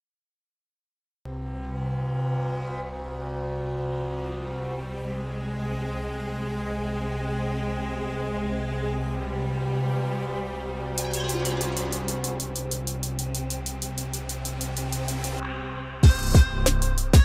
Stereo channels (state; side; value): identical; both; correlation 1.00